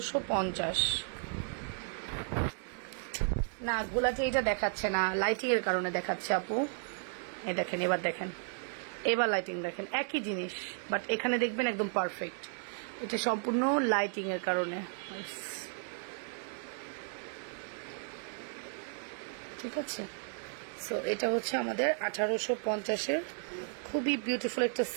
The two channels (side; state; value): left; silent; 55 dB below the other